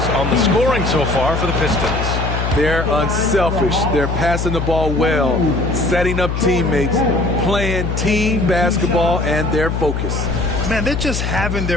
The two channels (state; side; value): noise; left; hum, 2 dB below the sound